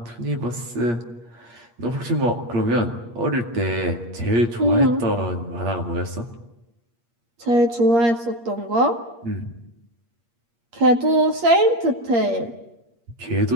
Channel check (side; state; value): left; late; 8.5 ms